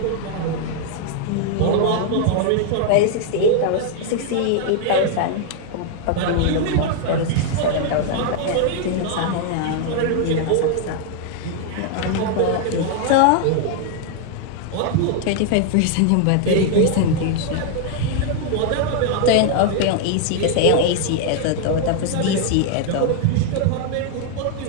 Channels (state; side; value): different; both; correlation 0.00